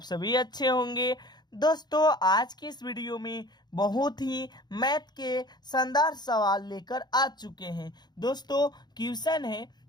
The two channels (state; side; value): late; right; 0.20 ms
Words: सभी अच्छे होंगे। दोस्तों, आज की इस वीडियो में बहुत ही मैथ के शानदार सवाल लेकर आ चुके हैं। दोस्तों, क्वेश्चन है